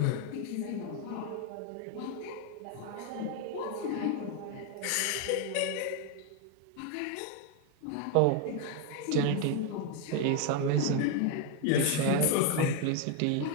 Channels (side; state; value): both; different; correlation 0.01